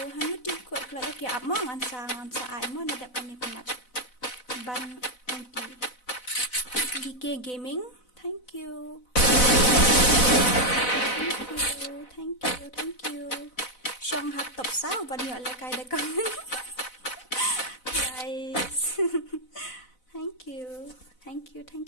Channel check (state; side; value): late; right; 4.0 ms